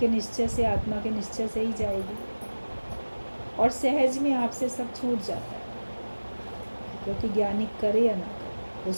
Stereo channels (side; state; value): both; inverted; correlation -1.00